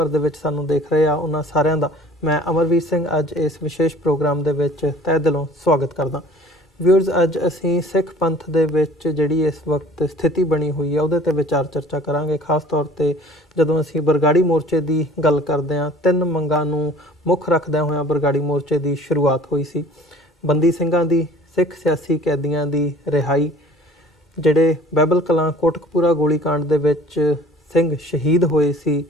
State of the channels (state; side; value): normal; both; correlation 0.49